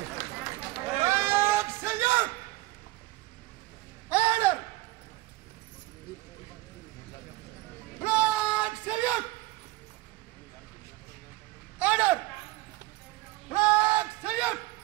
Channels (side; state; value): left; quieter; 19.3 dB